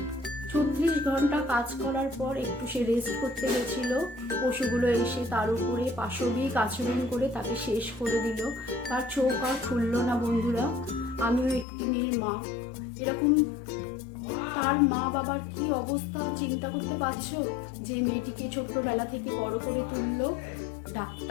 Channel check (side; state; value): right; drops out; at 11.7 s